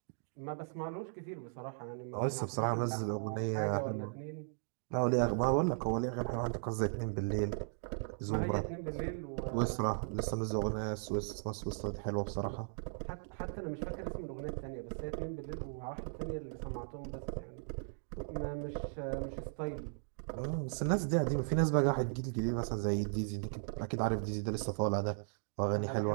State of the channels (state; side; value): silent; left; digital silence